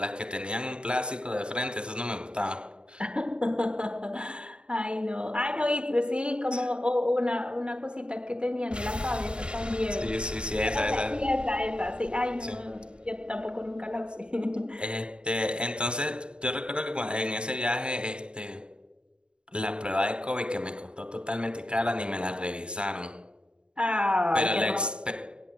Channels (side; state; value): left; late; 0.052 ms